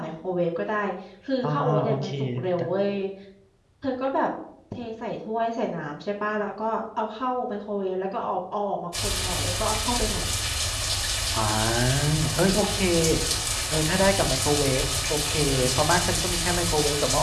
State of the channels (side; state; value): both; identical; correlation 1.00